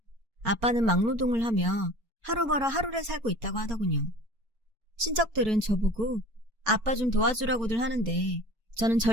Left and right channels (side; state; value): left; late; 4.7 ms